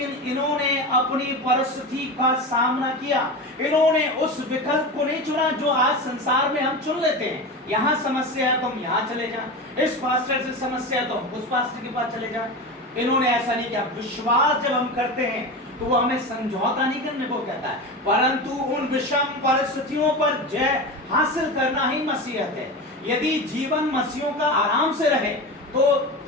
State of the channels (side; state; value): both; normal; correlation 0.25